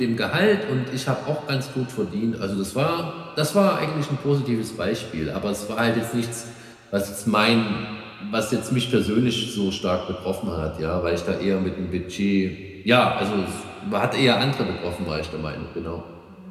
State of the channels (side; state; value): both; identical; correlation 1.00